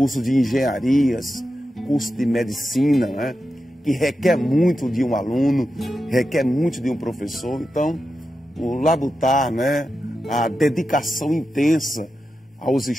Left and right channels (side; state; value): both; normal; correlation 0.90